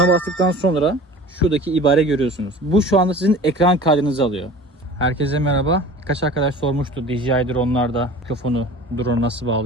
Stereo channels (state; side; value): normal; both; correlation 0.41